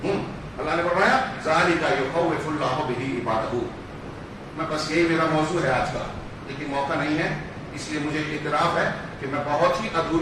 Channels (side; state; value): both; identical; correlation 1.00